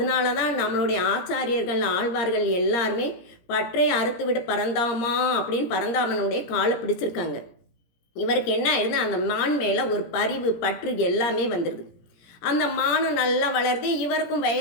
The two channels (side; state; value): right; late; 17 ms